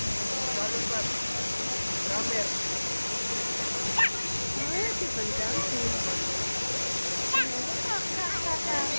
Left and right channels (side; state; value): both; inverted; correlation -1.00